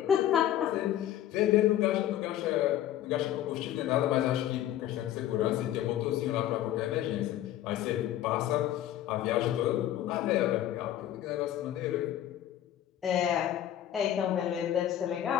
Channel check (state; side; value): quieter; right; 12.1 dB